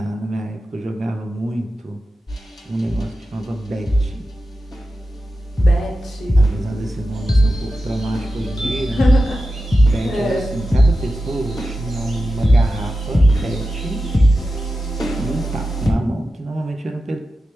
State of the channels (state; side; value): normal; both; correlation 0.92